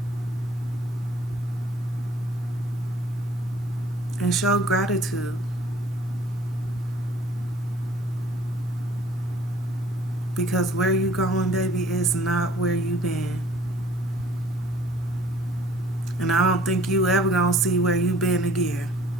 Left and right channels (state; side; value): normal; both; correlation 0.55